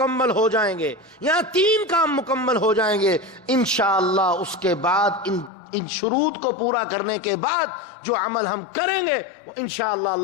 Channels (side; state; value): right; drops out; at 5.5 s